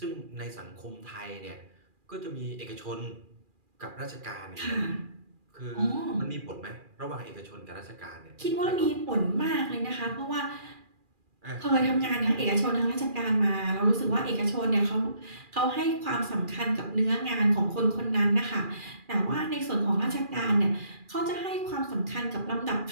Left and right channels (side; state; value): left; late; 2.4 ms